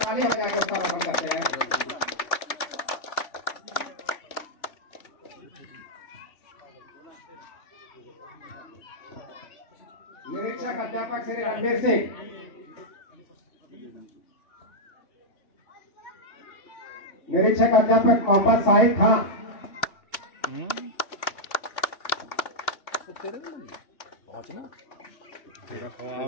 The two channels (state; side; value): late; right; 2.9 ms